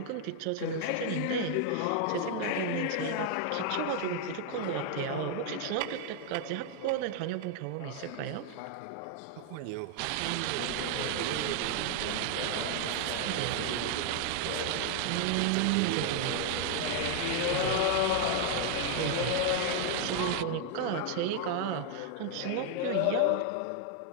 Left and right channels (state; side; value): different; both; correlation 0.00